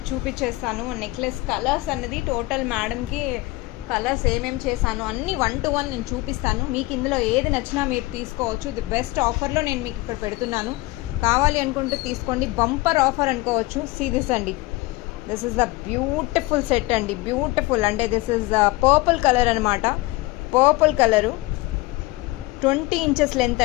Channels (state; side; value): quieter; right; 21.1 dB